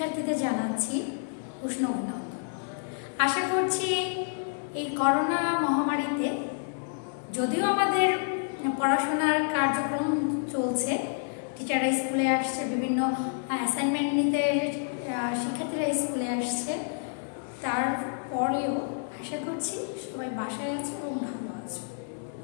জানাচ্ছি উষ্ণ অভিনন্দন। আশা করছি এই করোনা মহামারীতে যদিও আমাদের পড়াশোনার কার্যক্রম চলছে, টিচাররা স্কুলে আসছে, বিভিন্ন অ্যাসাইনমেন্ট নিতে শিক্ষার্থীরা স্কুলে আসছে, তারপরেও আশা করছি সবাই বাসায় আছে এবং ভালো আছে।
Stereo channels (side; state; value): right; silent; 59 dB below the other